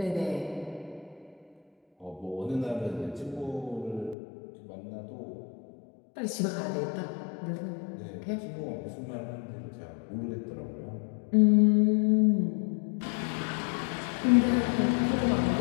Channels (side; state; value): right; drops out; at 4.2 s